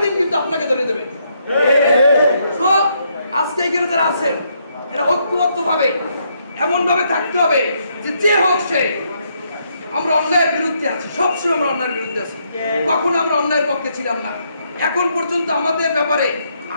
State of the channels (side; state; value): both; inverted; correlation -0.75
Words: দিন কিন্তু আপনাকে ধরে দেবে। আজকে এখানে যারা আছেন এরা ঐক্যবদ্ধ ভাবে এমন ভাবে থাকতে হবে যে যে হোক সে, আমরা অন্যায়ের বিরুদ্ধে আছি, সবসময় আমরা অন্যায়ের বিরুদ্ধে আছি, কখনো আমরা অন্যায়ের পক্ষে ছিলাম না। এখন পর্যন্ত আমাদের ব্যাপারে,